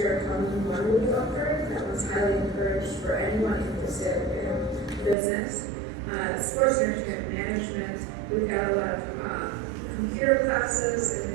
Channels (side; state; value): left; drops out; at 5.2 s